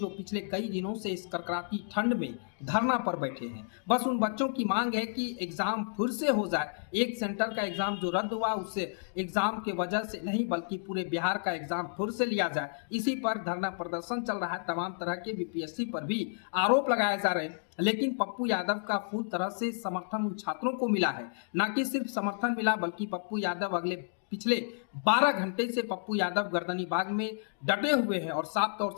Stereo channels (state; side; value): silent; right; digital silence